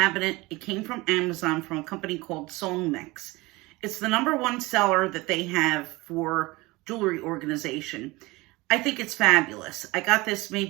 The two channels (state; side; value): quieter; left; 22.1 dB